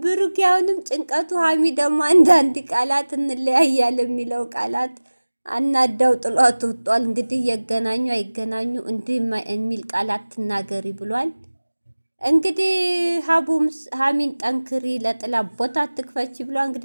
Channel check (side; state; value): both; inverted; correlation -1.00